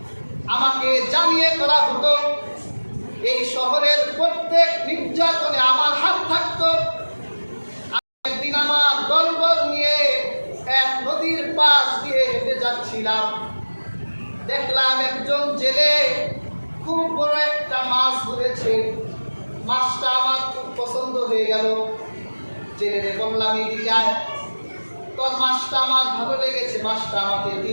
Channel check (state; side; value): inverted; both; correlation -1.00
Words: আমাকে জানিয়ে করা হতো। এই শহরের প্রত্যেক নির্যাতনে আমার হাত থাকতো। একদিন আমার দলবল নিয়ে এক নদীর পাশ দিয়ে হেঁটে যাচ্ছিলাম, দেখলাম একজন জেলে খুব বড় একটা মাছ ধরেছে। মাছটা আমার খুব পছন্দ হয়ে গেল। জেলে বললাম, এদিকে আয়, তোর মাছটা আমার ভালো লেগেছে, মাছটা আমাকে